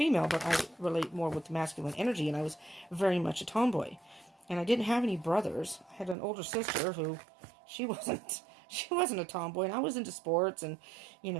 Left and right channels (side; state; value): left; drops out; at 6.2 s